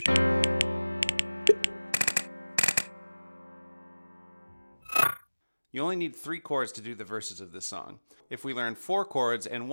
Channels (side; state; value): both; inverted; correlation -1.00